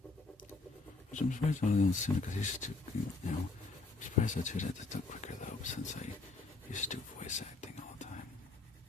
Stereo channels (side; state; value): right; quieter; 3.6 dB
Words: Which I'm surprised I didn't sooner, because I used to, I'm surprised that it took quicker though, since I used to do voice acting all the time.